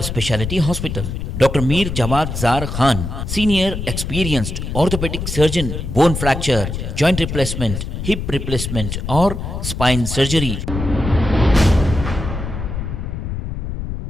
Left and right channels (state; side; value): noise; left; rumble, 5 dB below the sound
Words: Hospital. Dr. Mir Jawad Zar Khan, Senior Experienced Orthopedic Surgeon, Bone Fracture, Joint Replacement, Hip Replacement or Spine Surgery.